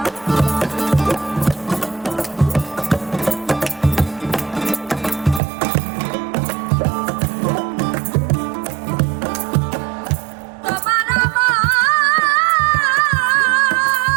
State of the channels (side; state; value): left; drops out; at 5.4 s